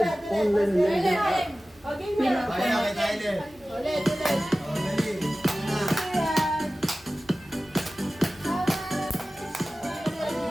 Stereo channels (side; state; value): both; normal; correlation 0.96